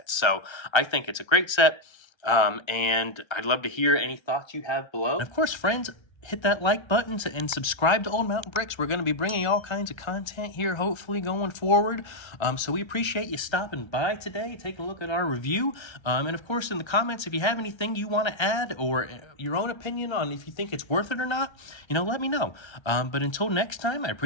So I think it's a great set. And I'd love to hear any thoughts you have below. And of course, friends, hit that like button and subscribe to Old Mountain Bricks. We're going to be bringing all kinds of content here, hopefully, going forward. So we appreciate you stopping by today, taking a look at our review. And of course, in the comments, if you have anything you want to add or your own opinion on if you think it's worth it or not, let me know. But until next time, I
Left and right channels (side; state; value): right; late; 1.3 ms